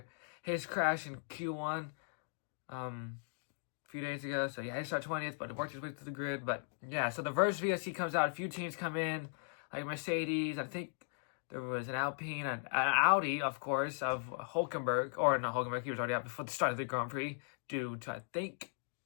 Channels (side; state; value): right; silent; digital silence